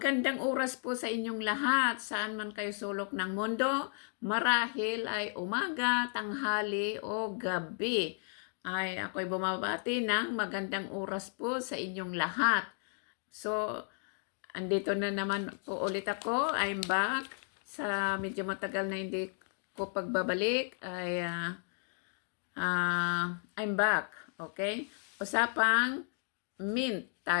oras po sa inyong lahat, saan man kayo sulok ng mundo. Marahil ay umaga, tanghali o gabi. Ay ako'y bumabati ng magandang oras po sa inyong lahat. So, andito na naman po ulit ako. I'm back. Sa medyo matagal na hindi ko pagbabalik ay I'm back. Okay? Usapang mint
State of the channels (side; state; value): right; silent; 55 dB below the other